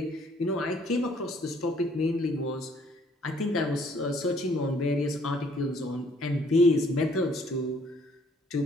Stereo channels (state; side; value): normal; both; correlation 0.62